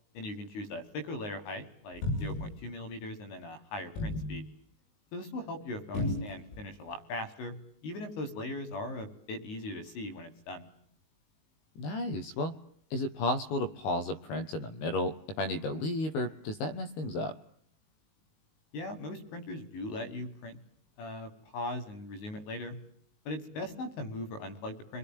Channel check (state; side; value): late; right; 19 ms